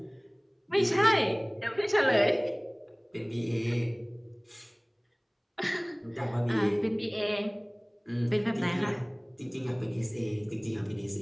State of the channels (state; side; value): identical; both; correlation 1.00